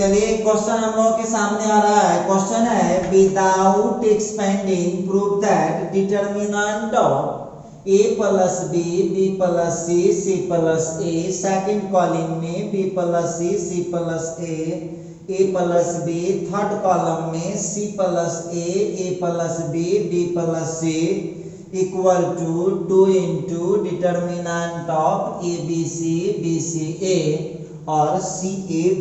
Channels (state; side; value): identical; both; correlation 1.00